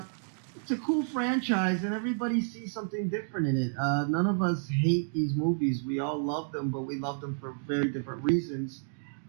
a cool franchise, and everybody sees something different in it. None of us hate these movies. We all love them, but we love them for very different reasons.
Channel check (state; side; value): silent; left; digital silence